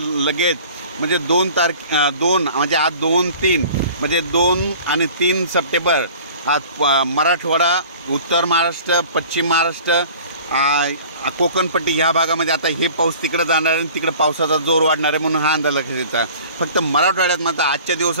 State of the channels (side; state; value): both; inverted; correlation -0.45